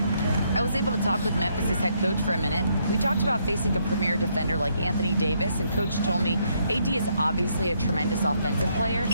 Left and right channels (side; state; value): both; inverted; correlation -0.73